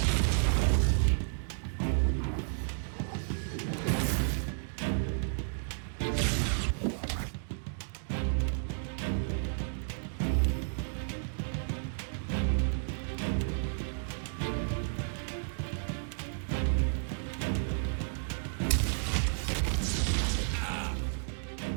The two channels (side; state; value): left; silent; digital silence